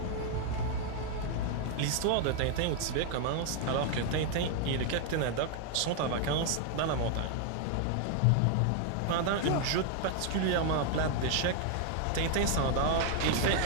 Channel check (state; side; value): different; both; correlation 0.00